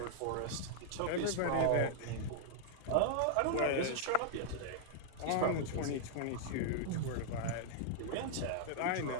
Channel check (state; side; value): different; both; correlation -0.01